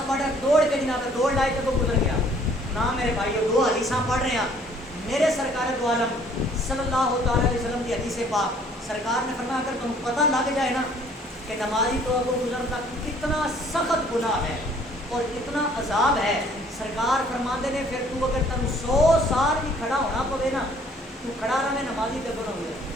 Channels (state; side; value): normal; both; correlation 0.58